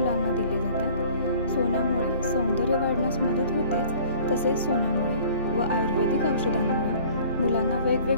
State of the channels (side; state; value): both; inverted; correlation -0.50